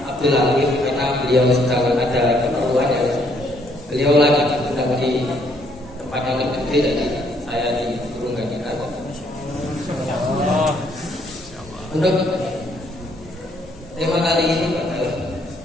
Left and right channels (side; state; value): both; normal; correlation 0.68